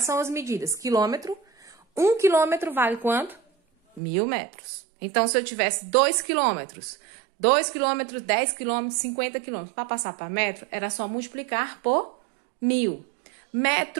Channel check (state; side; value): drops out; left; at 4.0 s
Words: são as medidas? Quilômetro, 1 quilômetro vale quanto? 1000 metros. Então, se eu tivesse 2 quilômetros, 10 quilômetros, 50 quilômetros, para passar para metro, era só multiplicar por 1000.